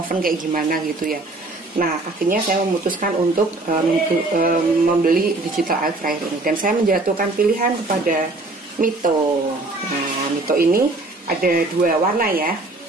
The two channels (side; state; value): left; quieter; 3.0 dB